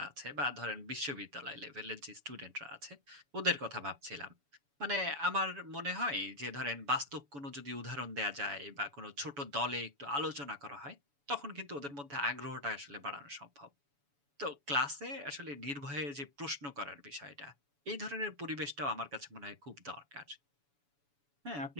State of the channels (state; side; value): late; left; 7.0 ms